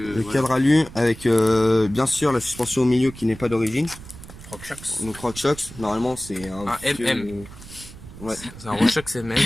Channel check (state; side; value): noise; right; rumble, 16 dB below the sound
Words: voilà. cadre alu avec bien sûr la suspension au milieu qui n'est pas d'origine. RockShox. Donc RockShox, normalement c'est un MM. Ouais. C'est un RockShox MM.